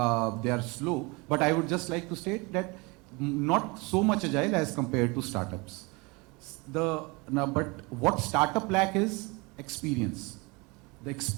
slow, but I would just like to state that not so much agile as compared to startups. But what startup lack is experience. The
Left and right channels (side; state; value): left; quieter; 26.9 dB